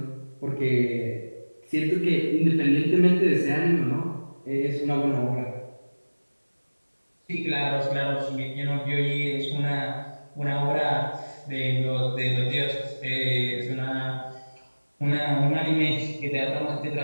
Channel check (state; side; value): inverted; both; correlation -1.00